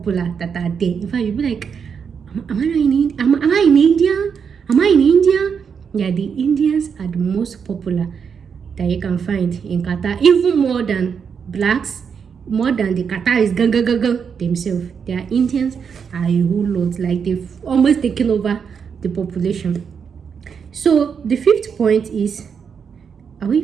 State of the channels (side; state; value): left; quieter; 6.6 dB